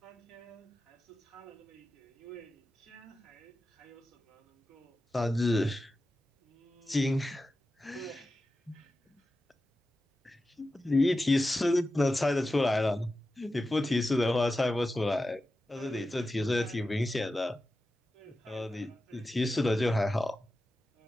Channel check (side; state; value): both; normal; correlation 0.93